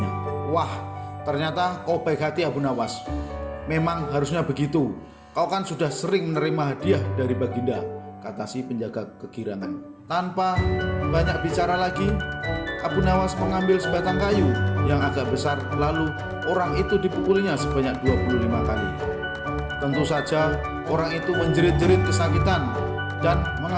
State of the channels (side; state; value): both; identical; correlation 1.00